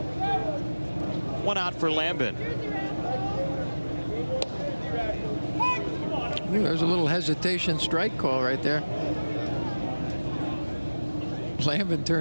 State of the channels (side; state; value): both; inverted; correlation -1.00